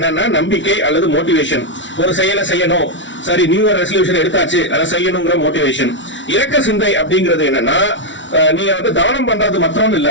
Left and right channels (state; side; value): late; right; 0.55 ms